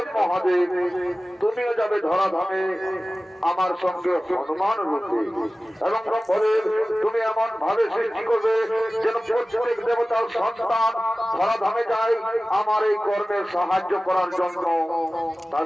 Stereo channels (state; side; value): normal; both; correlation 0.97